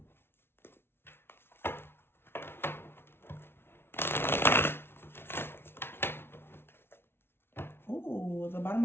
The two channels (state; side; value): late; right; 0.12 ms